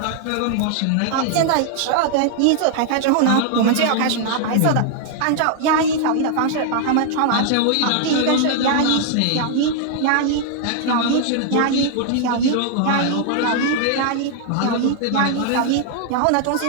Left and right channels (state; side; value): different; both; correlation 0.00